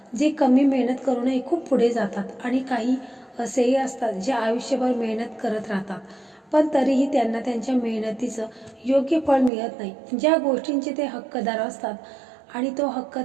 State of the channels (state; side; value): drops out; left; at 9.5 s